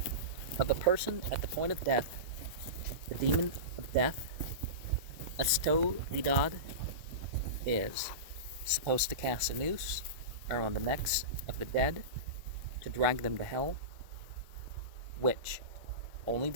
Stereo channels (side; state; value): left; late; 2.0 ms